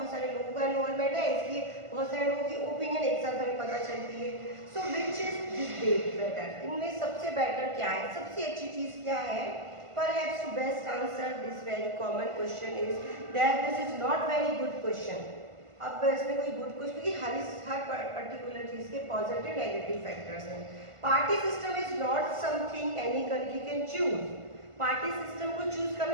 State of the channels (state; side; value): late; left; 1.5 ms